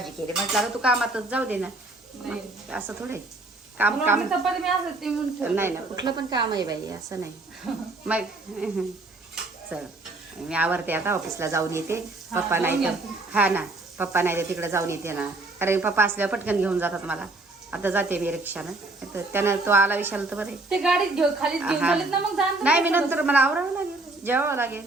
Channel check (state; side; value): quieter; left; 3.1 dB